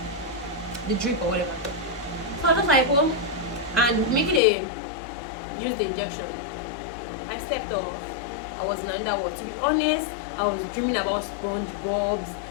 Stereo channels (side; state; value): right; drops out; at 4.4 s